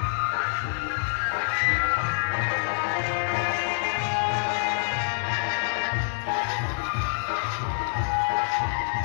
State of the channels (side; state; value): right; silent; digital silence